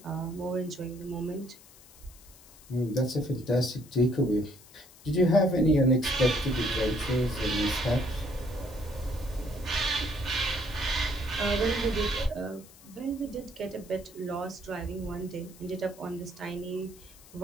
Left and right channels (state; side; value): noise; left; hiss, 22 dB below the sound